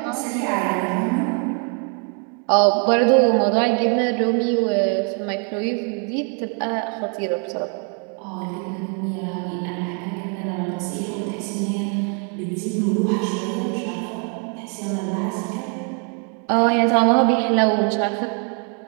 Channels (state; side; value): quieter; left; 40.0 dB